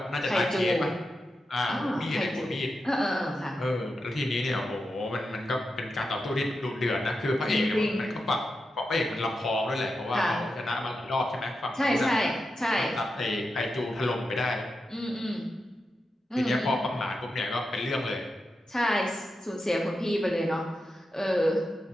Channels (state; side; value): normal; both; correlation 0.88